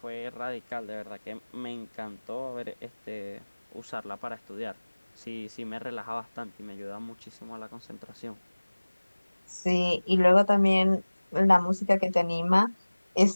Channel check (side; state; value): both; inverted; correlation -1.00